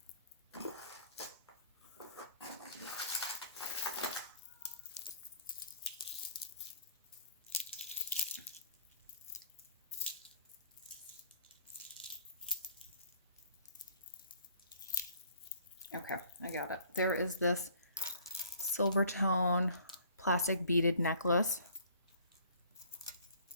Okay, I got it. There is this silver tone plastic beaded necklace.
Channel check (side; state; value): both; inverted; correlation -0.55